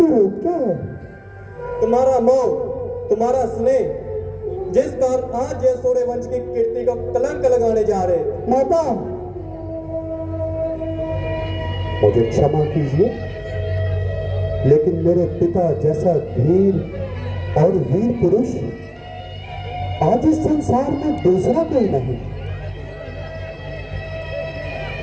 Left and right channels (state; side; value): identical; both; correlation 1.00